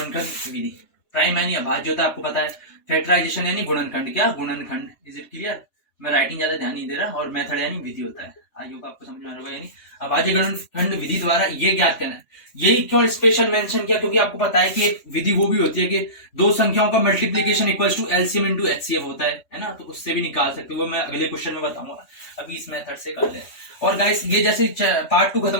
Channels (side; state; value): right; late; 3.1 ms